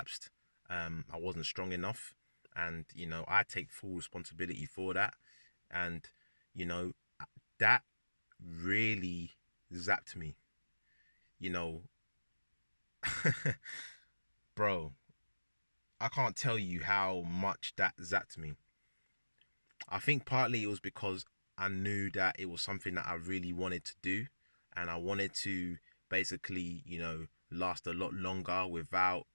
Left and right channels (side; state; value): both; inverted; correlation -1.00